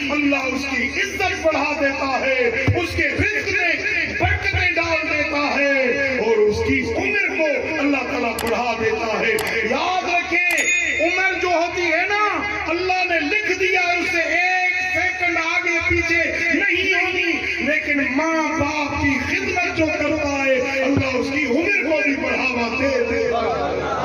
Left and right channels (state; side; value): identical; both; correlation 1.00